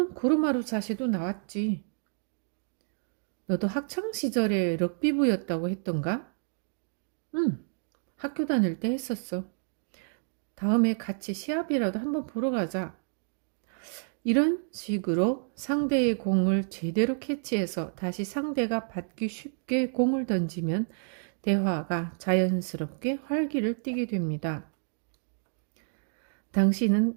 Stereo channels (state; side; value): silent; left; digital silence